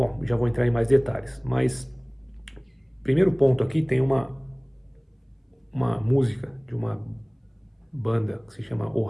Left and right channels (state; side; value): identical; both; correlation 1.00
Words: já vou entrar em mais detalhes, mas primeiro ponto aqui tem uma música de uma banda que se chama O